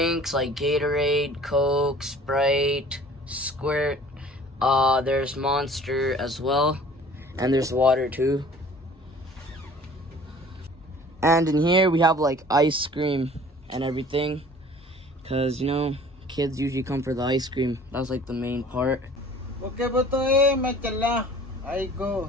like Gatorade, Coke, Sprite, Squirt. There's Monster as well, and there's water too. And in here we have like ice cream and everything, cause you know kids usually come for the ice cream. That's like the main part. Okay ba to eh, may kala. Ay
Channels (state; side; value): normal; both; correlation 0.49